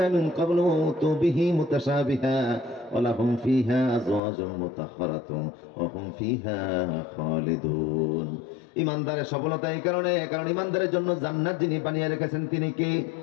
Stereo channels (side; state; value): right; drops out; at 4.2 s